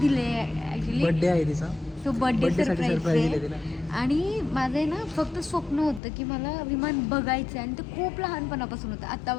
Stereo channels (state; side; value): drops out; right; at 6.0 s